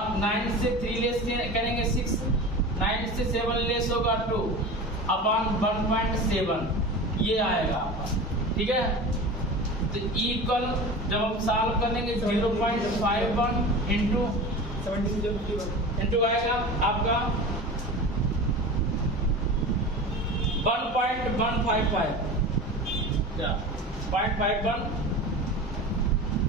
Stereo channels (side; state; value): both; normal; correlation 0.32